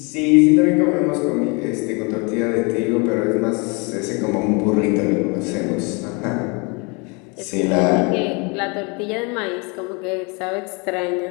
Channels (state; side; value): quieter; right; 30.9 dB